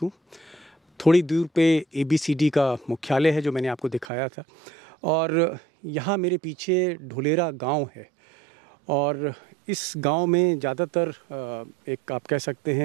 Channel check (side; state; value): left; drops out; at 4.0 s